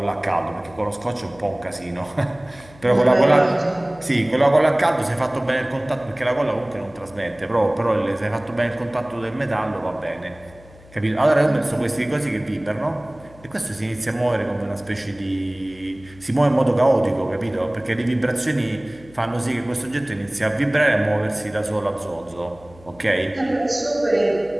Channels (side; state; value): left; noise; hum, 23 dB below the sound